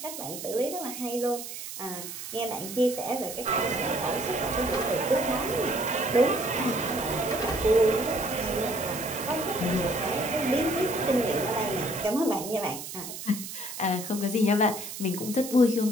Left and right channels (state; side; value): noise; right; hiss, 9 dB below the sound